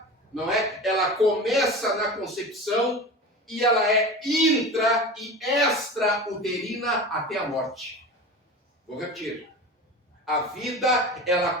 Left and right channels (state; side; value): normal; both; correlation 0.31